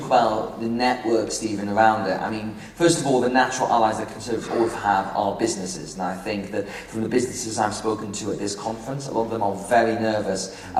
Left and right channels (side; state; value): both; identical; correlation 1.00